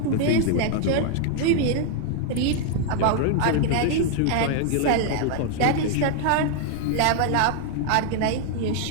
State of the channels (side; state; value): both; different; correlation 0.00